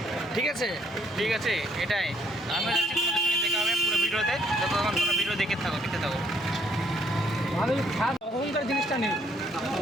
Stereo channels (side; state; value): both; normal; correlation 0.67